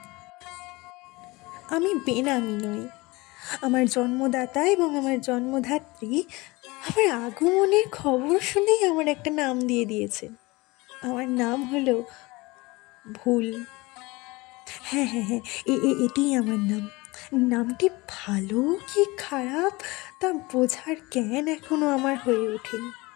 আমি বেনামি নই। আমার জন্মদাতা এবং আমার জন্মধাত্রী আমার আগমনের খবর শুনেই আমার একটা নাম দিয়ে দিয়েছেন। আমার নাম হলো ভুল। হ্যাঁ হ্যাঁ হ্যাঁ, এটাই আমার নাম। নামটি ভালো কি খারাপ তা বোঝার জ্ঞান এখনো আমার হয়ে ওঠেনি,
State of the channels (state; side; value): quieter; right; 22.9 dB